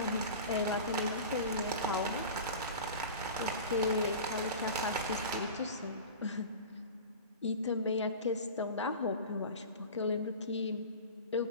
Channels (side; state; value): both; inverted; correlation -0.33